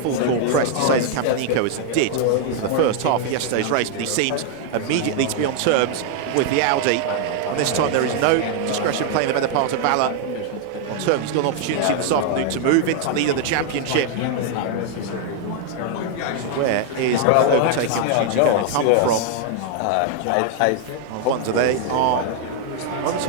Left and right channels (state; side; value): different; both; correlation 0.00